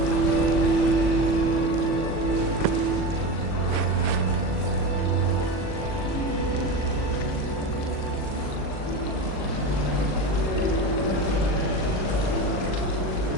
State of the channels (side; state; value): right; late; 39 ms